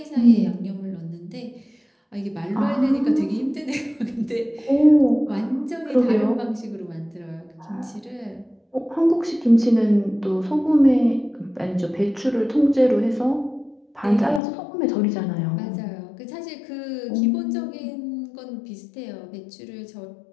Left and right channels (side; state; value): right; drops out; at 14.4 s